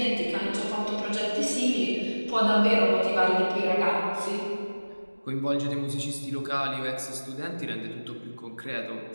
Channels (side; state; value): both; inverted; correlation -1.00